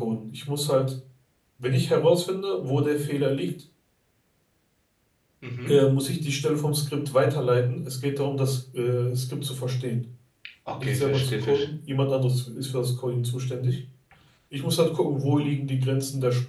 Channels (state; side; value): identical; both; correlation 1.00